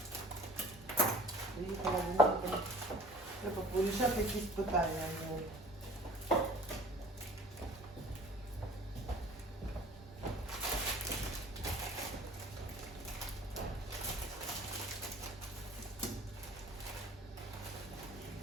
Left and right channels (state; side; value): normal; both; correlation 0.48